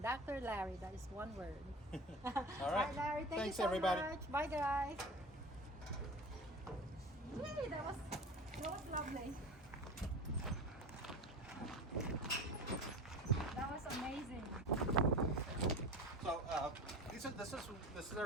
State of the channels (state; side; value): normal; both; correlation 0.34